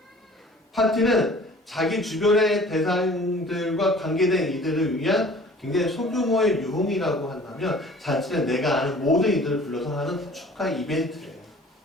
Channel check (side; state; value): both; normal; correlation 0.49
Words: 파티는 자기 주변의 대상들과 관계된 이들을 위한 굉장히 소규모의 유흥이라고 한다면 잔치는 내가 아는 모든 이들을 불러서 하는 축하 이벤트예요.